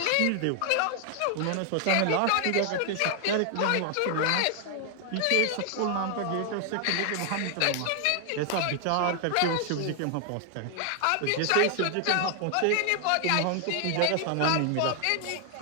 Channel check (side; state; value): both; different; correlation 0.00